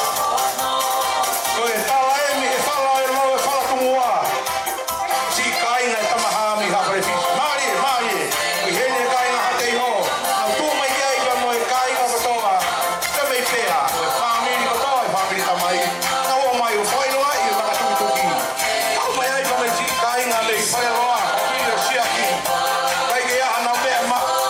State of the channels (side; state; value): both; identical; correlation 1.00